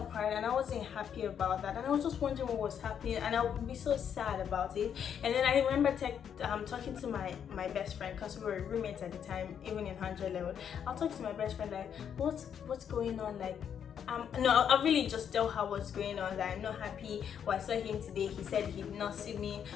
and I wasn't happy about that. And I was just wondering what was happening and I would be so sad about it. And then I remember talking to my best friend, because we were roommates at the time, even in 100 level. I'll talk to my best friend like, what's going on? Like, no, I'll really just tell her what's going on, that I'm not happy. Well, I saw him today, he said he did not see me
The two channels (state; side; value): quieter; right; 8.3 dB